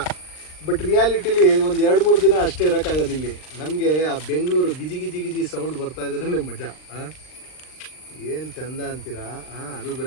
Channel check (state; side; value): late; right; 39 ms